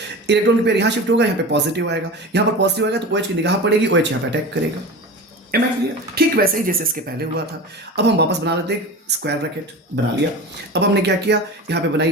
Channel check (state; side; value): normal; both; correlation 0.31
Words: इलेक्ट्रॉन के पेयर यहाँ शिफ्ट होगा, यहाँ पे पॉजिटिव आएगा, यहाँ पर पॉजिटिव आएगा तो OH की निगाह पड़ेगी, OH यहाँ पे अटैक करेगा। Am I clear? ठीक वैसे ही जैसे इसके पहले हुआ था। अब हम वापस बना लेते हैं, स्क्वायर ब्रैकेट बना लिया। अब हमने क्या किया, यहाँ पे